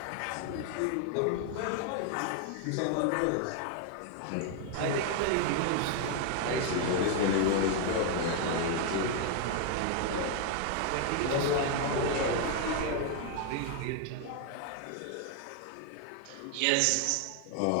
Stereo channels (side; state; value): both; different; correlation 0.00